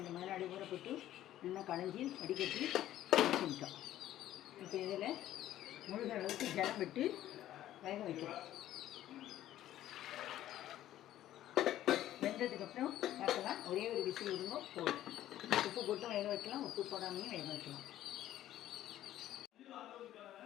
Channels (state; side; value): quieter; right; 13.1 dB